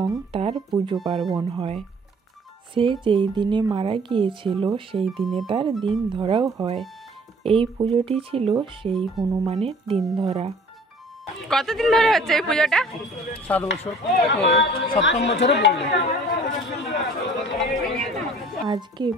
তার পুজো পার্বণ হয়। সে যেই দিনে মারা গিয়েছিল সেই দিনে তার দিন ধরাও হয়। এই পুজোটি ছিল সেই হনুমানের দিন ধরা। কতদিন ধরে হচ্ছে এই পুজোটা? 7 বছর, 7ম বছরে পড়লো। আজকে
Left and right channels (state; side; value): normal; both; correlation 0.52